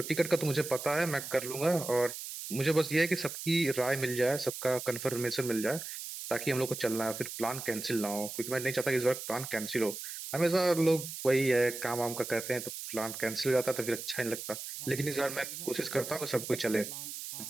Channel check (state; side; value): noise; right; hiss, 8 dB below the sound